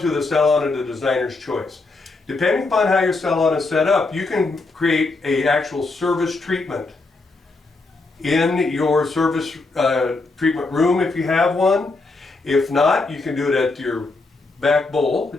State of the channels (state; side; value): quieter; right; 3.5 dB